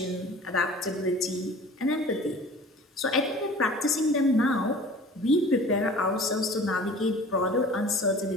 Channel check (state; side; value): normal; both; correlation 0.44